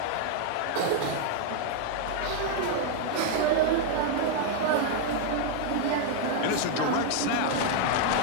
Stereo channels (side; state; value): both; different; correlation 0.00